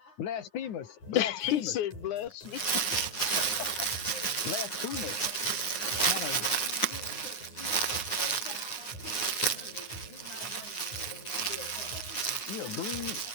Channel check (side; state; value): right; late; 9.6 ms